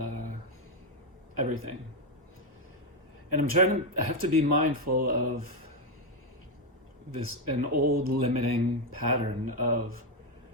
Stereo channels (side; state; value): both; normal; correlation 0.06